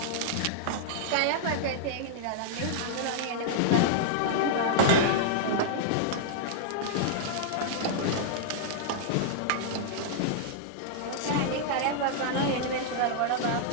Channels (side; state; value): both; different; correlation -0.02